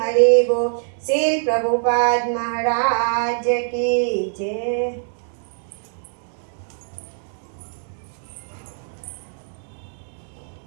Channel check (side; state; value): left; silent; digital silence